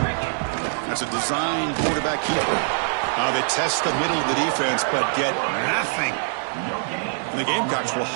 That's a design quarterback keeper. They test the middle of the defense, but get nothing. And the Gamecocks will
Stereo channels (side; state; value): left; silent; 59 dB below the other